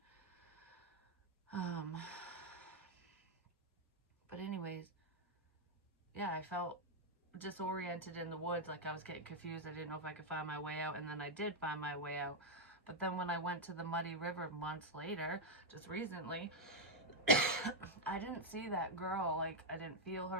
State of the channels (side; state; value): both; normal; correlation 0.00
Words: But anyways, yeah, I felt disoriented in the woods, like I was getting confused. I didn't know if I could find my way out, and then I did find my way out. But then when I went to the Muddy River months later, just recently, I didn't see that girl. Like, I didn't feel her,